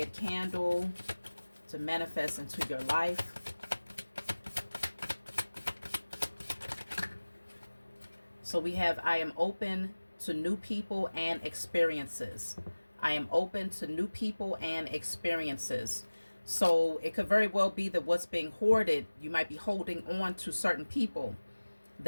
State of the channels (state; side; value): inverted; both; correlation -1.00